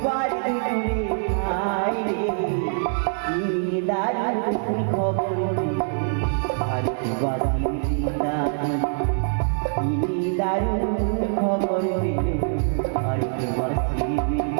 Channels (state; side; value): silent; left; digital silence